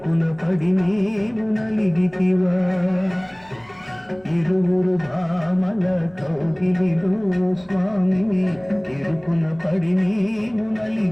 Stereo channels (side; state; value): left; noise; rumble, 29 dB below the sound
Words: పడి నీవు నలిగితివా ఇరువురు భామల కౌగిలిలో స్వామి ఇరుకున పడి నీవు